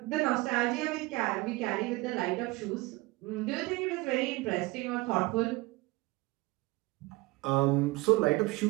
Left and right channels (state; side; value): quieter; left; 21.7 dB